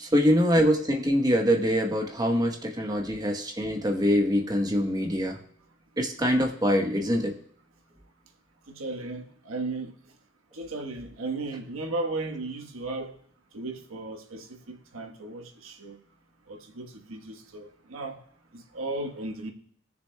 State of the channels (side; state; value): both; normal; correlation 0.69